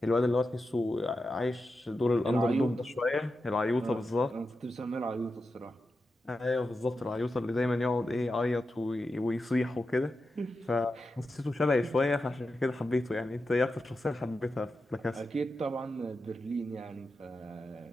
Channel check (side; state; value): both; normal; correlation 0.90